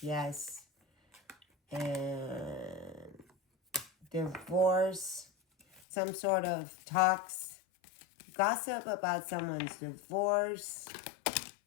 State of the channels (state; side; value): drops out; right; at 5.8 s